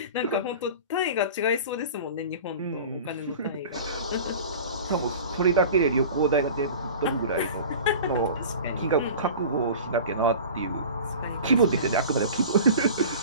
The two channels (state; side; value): inverted; both; correlation -0.38